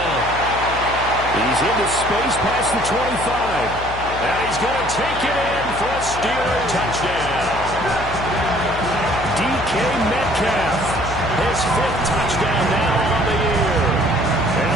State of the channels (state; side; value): noise; left; hum, 10 dB below the sound